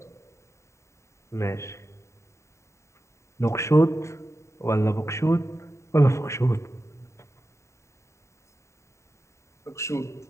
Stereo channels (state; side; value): late; right; 0.14 ms